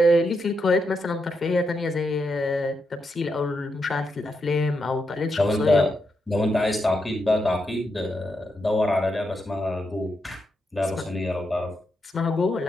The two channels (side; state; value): both; normal; correlation 0.83